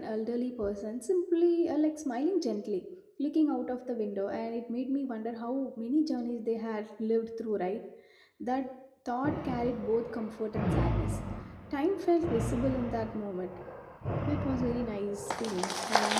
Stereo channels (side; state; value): both; identical; correlation 1.00